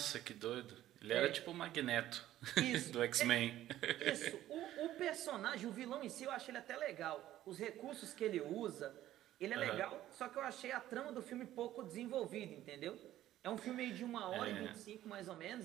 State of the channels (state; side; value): quieter; left; 13.5 dB